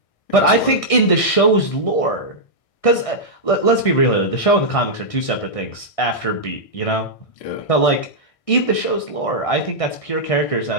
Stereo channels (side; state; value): right; late; 1.6 ms